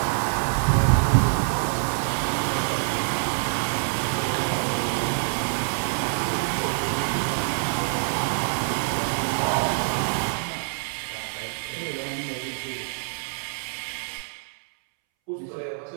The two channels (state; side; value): silent; left; 61 dB below the other